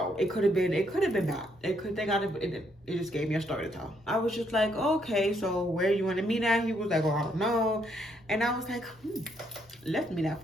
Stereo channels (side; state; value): both; normal; correlation 0.73